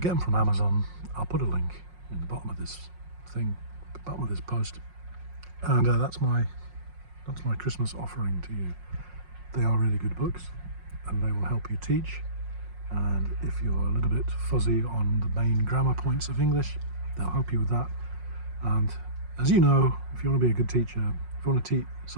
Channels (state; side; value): late; left; 5.5 ms